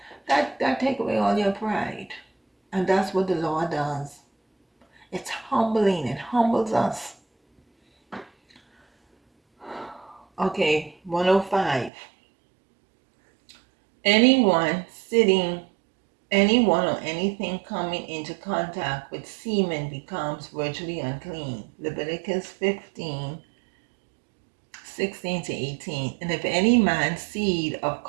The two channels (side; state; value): left; drops out; at 11.9 s